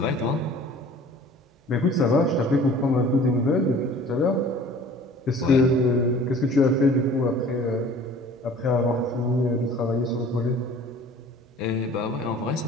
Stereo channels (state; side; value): normal; both; correlation 0.48